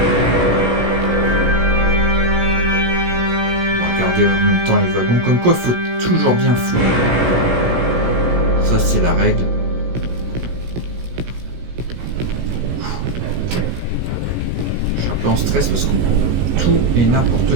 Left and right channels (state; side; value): late; left; 17 ms